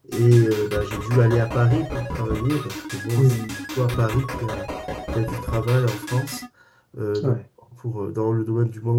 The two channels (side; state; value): both; identical; correlation 1.00